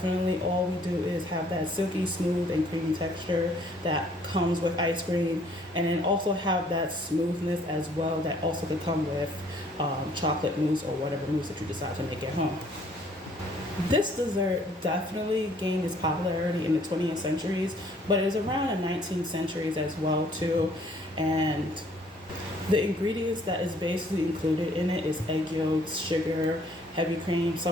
All we do is have that silky smooth and creamy texture that comes with ice cream, and then also have that smoothness as well that also could come with chocolate mousse or whatever mousse that you decide to make at home. This dessert definitely gained its popularity in the 20th centuries, but it was around the 19th centuries as well too. And the ingredients that is basically included in it is egg yolks, sugar, heavy cream.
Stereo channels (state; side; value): normal; both; correlation 0.61